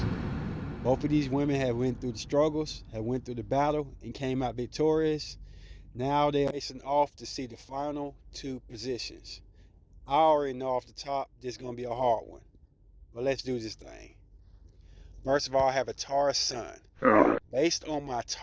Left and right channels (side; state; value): both; identical; correlation 1.00